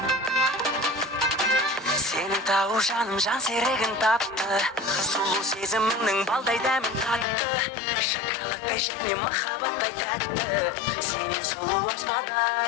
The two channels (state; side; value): drops out; right; at 7.2 s